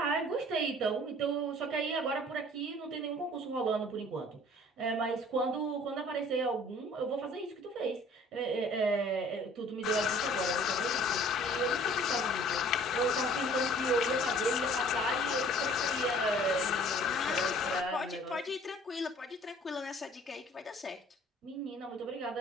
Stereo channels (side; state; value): both; normal; correlation 0.52